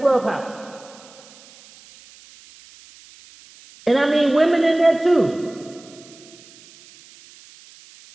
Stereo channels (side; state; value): right; noise; hiss, 24 dB below the sound